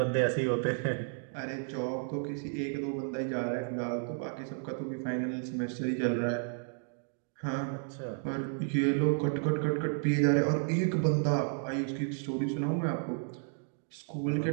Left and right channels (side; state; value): left; silent; 56 dB below the other